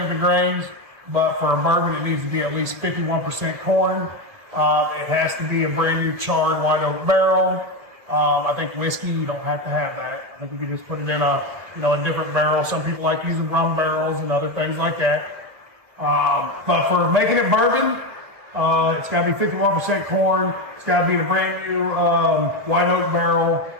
the grains, but for a bourbon, it needs to be at least 51% corn. It has to be a brand new charred white oak barrel. I think whiskey, you don't have to have that. I think you can just put it in a different barrel. Some people like using rum barrels and other things like that. But for making it bourbon, it's got to be 51% corn. It's got to be in a brand new white oak barrel,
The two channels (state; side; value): late; left; 1.5 ms